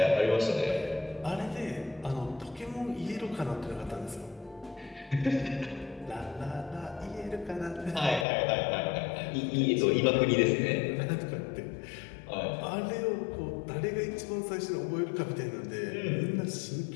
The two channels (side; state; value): right; drops out; at 8.2 s